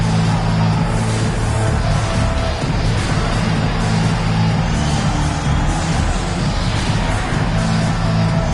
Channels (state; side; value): identical; both; correlation 1.00